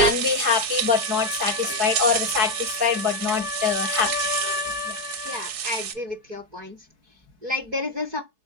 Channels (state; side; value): late; left; 4.7 ms